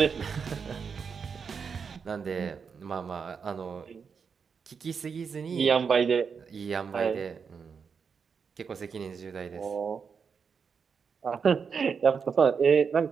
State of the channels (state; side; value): quieter; left; 6.0 dB